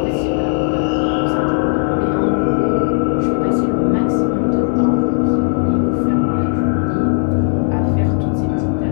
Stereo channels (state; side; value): silent; right; digital silence